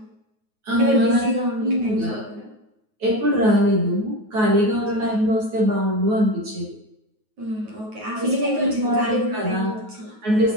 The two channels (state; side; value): late; left; 9.3 ms